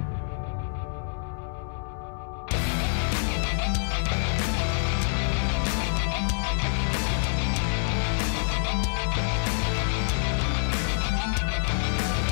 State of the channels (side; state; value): right; silent; 60 dB below the other